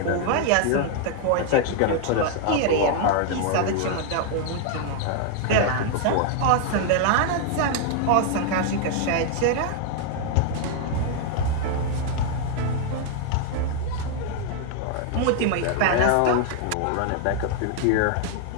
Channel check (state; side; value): different; both; correlation 0.00